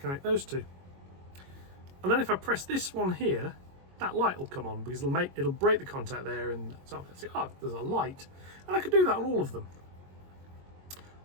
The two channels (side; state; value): left; late; 22 ms